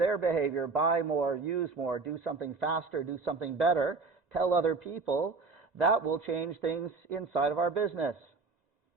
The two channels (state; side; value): quieter; left; 4.2 dB